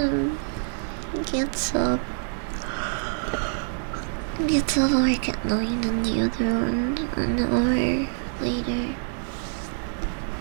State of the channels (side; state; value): left; silent; digital silence